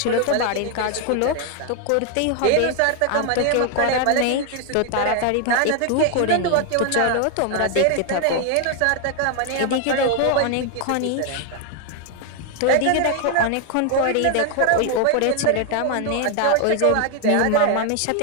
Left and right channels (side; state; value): both; different; correlation 0.01